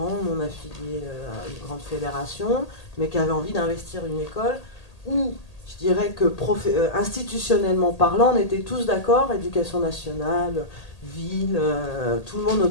non affiliés à une grande fédération, mais qui avaient envie d'investir une école où, je dirais que institutionnellement parlant, on était tous d'accord, éducation nationale, ville, tout le monde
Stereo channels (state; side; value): late; right; 1.8 ms